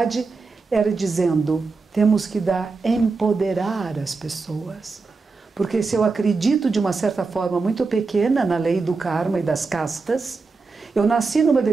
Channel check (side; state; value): left; quieter; 4.2 dB